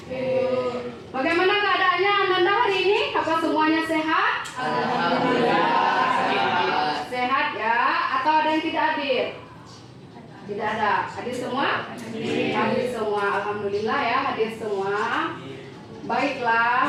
Bagaimana keadaannya Ananda hari ini? Apa semuanya sehat? Alhamdulillah. Sehat ya? Atau ada yang tidak hadir? Tidak ada. Hadir semua? Hadir semua. Alhamdulillah ya, hadir semua.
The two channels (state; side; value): identical; both; correlation 1.00